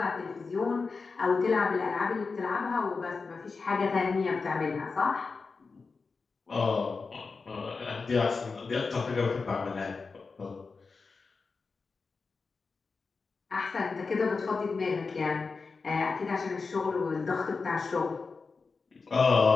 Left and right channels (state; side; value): quieter; right; 4.5 dB